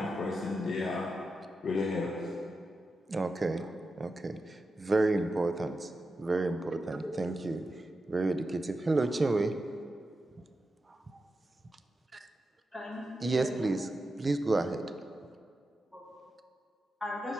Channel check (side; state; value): both; normal; correlation 0.90